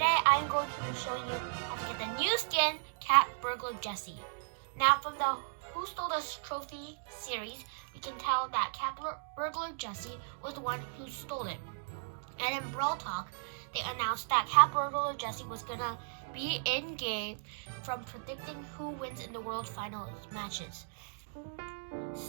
I'm going to be showing you how to get the new skin, Cat Burglar Jessie. Now, from the Who Stole This Trophy series, we can tell that Cat Burglar Jessie was the one who stole it. And in Brawl Talk, they announced that Cat Burglar Jessie was gonna be in-game from predicting who wins in the World Finals matches.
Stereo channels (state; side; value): silent; left; digital silence